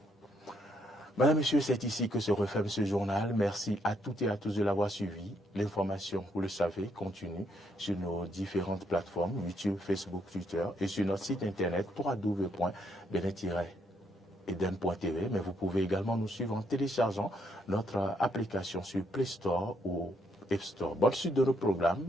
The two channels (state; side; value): normal; both; correlation 0.73